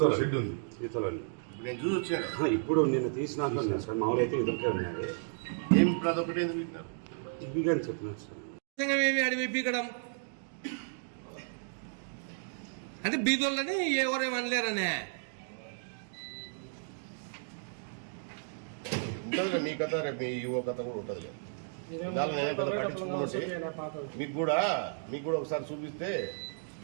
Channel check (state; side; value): silent; left; digital silence